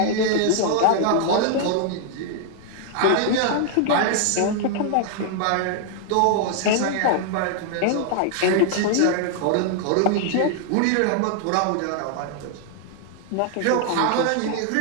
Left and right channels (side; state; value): both; different; correlation 0.00